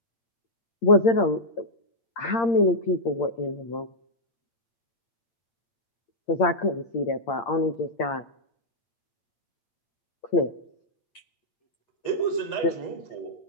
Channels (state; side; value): late; right; 8.7 ms